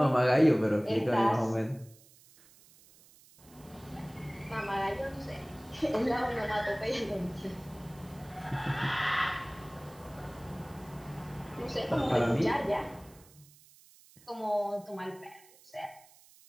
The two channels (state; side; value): noise; right; hiss, 25 dB below the sound